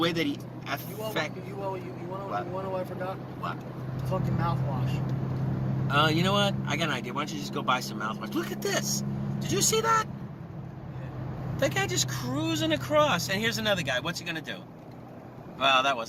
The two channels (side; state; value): both; identical; correlation 1.00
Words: that he affects... You want to know what I forgot? What? Fucking mouthwash. You know what? I got an idea. Why don't you just go buy some mouthwash? Look at this. Did you see that? Yeah. That guy just cruising across. And here's another guy. What's he going to do? Well, that